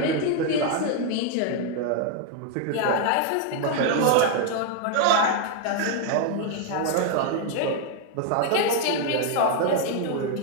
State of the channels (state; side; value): different; both; correlation 0.01